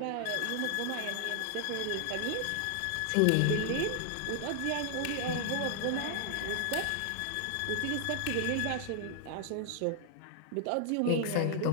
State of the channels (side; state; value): both; different; correlation 0.00